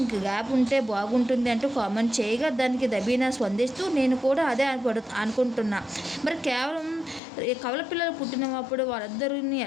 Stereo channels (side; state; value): right; drops out; at 7.2 s